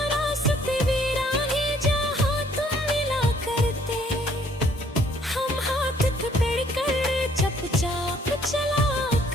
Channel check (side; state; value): both; normal; correlation 0.62